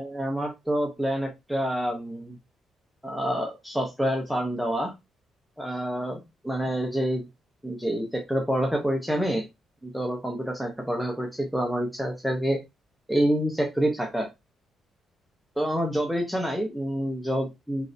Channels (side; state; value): both; normal; correlation 0.89